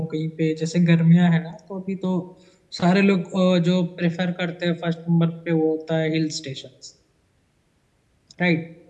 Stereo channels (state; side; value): identical; both; correlation 1.00